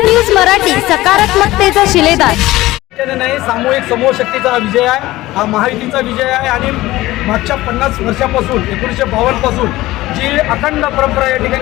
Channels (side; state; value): right; quieter; 17.6 dB